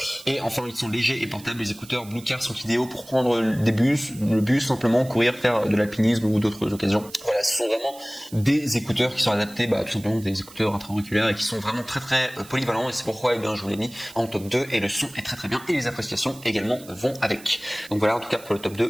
Et enfin, ils sont légers et portables. Les écouteurs Bluecare sont idéaux pour prendre le bus, simplement courir, faire de l'alpinisme ou d'autres occasions. Voilà, ce sont vraiment des écouteurs qui sont adaptés, tout simplement des écouteurs intra-auriculaires et qui sont vraiment très très polyvalents, et c'est pourquoi je vous l'ai mis en top 2, et le son est très très bien et les appréciations également vont avec. Donc voilà, en tout cas pour le top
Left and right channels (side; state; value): right; noise; hiss, 20 dB below the sound